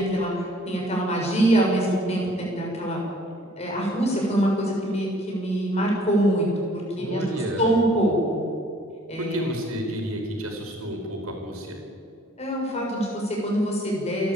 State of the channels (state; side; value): normal; both; correlation 0.58